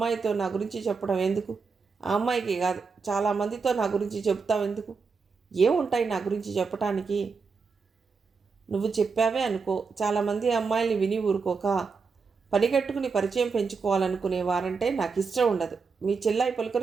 నా గురించి చెప్పడం ఎందుకు? ఆ అమ్మాయికి కాదు, చాలామందితో నా గురించి చెప్తావు ఎందుకు? ఏముంటాయి నా గురించి చెప్పటానికి? నువ్వు చెప్పావే అనుకో, చాలామంది అమ్మాయిల్ని విని ఊరుకోక పనిగట్టుకుని పరిచయం పెంచుకోవాలనుకునేవారంటే నాకు ఇష్టం ఉండదు. మీ చెల్లాయి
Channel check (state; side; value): quieter; left; 5.0 dB